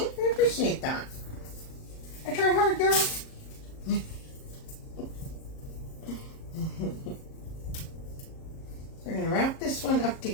appreciate that. I try hard, girl. We're going to wrap this one up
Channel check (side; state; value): right; late; 38 ms